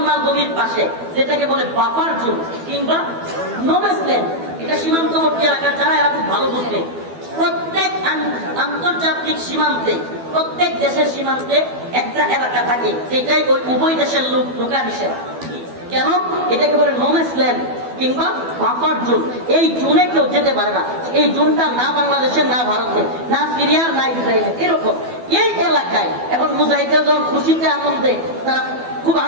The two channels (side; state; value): left; late; 12 ms